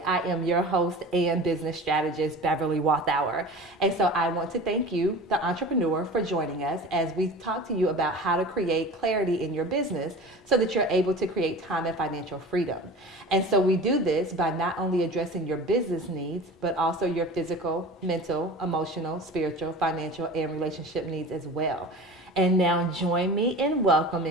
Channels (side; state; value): both; normal; correlation 0.36